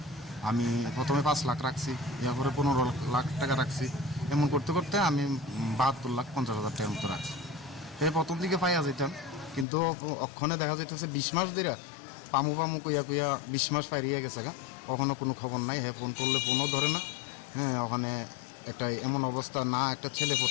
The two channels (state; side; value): drops out; right; at 9.7 s